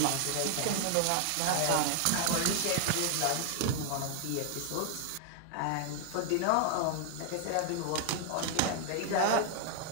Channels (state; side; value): different; both; correlation 0.00